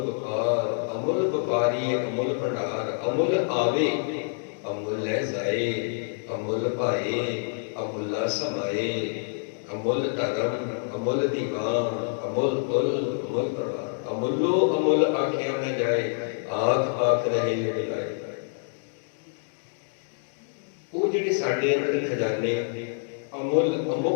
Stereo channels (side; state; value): right; silent; digital silence